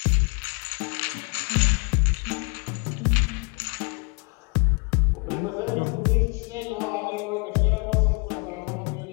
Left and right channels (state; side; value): quieter; right; 32.1 dB